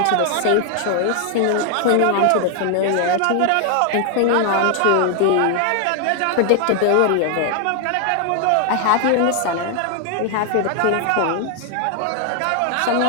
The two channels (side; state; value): both; different; correlation 0.00